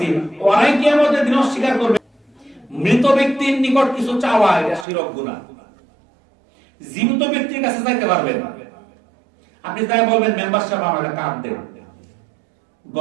ওরাই কিয়ামতের দিন অস্বীকার করবে। মৃত ব্যক্তির নিকট কিছু চাওয়া এটা শিরক গুনাহ। জীবিত ব্যক্তির কাছে চাইতে পারবেন। আপনি তাই বলবেন, মেম্বার সাহেব আমার একটা কার্ড দেন,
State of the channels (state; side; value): drops out; left; at 4.9 s